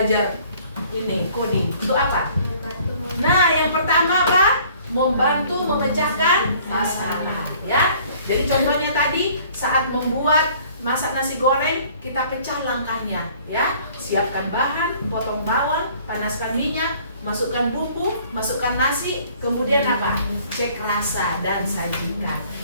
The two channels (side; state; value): both; inverted; correlation -0.55